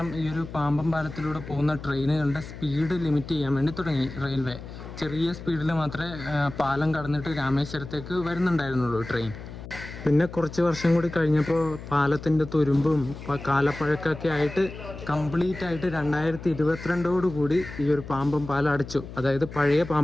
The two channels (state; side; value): noise; left; hum, 12 dB below the sound